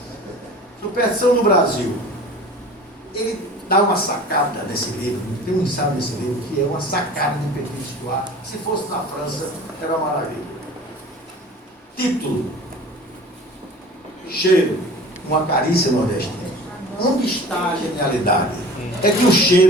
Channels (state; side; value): normal; both; correlation 0.41